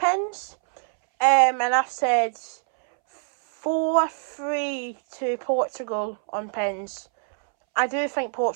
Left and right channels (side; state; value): left; silent; 62 dB below the other